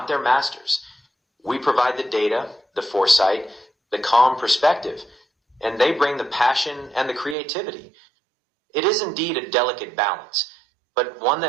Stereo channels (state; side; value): drops out; left; at 7.4 s